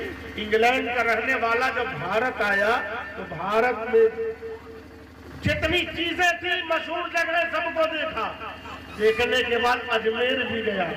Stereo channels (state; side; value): identical; both; correlation 1.00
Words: इंग्लैंड का रहने वाला जब भारत आया तो भारत में जितनी चीजें थी मशहूर जगह सबको देखा। देखने के बाद अजमेर भी गया,